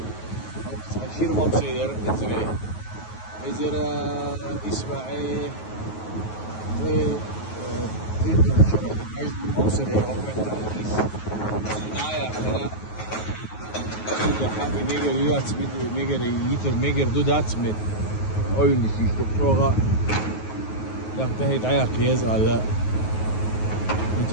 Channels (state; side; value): late; right; 9.4 ms